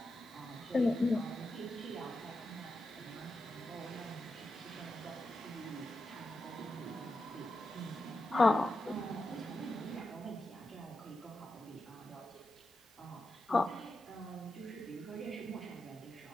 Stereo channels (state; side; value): normal; both; correlation 0.88